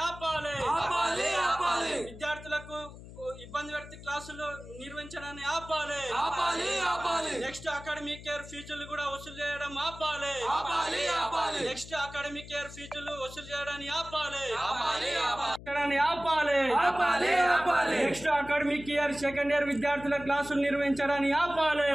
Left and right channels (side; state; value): left; noise; hum, 15 dB below the sound